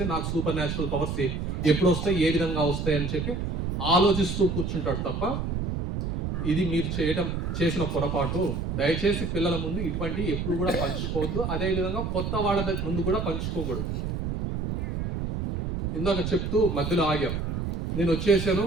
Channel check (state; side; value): noise; right; rumble, 2 dB below the sound